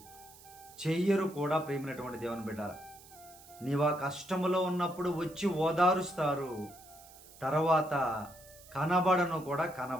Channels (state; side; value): noise; right; hiss, 21 dB below the sound